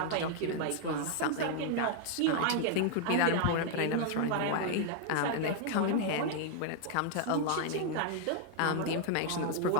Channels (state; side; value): different; both; correlation 0.00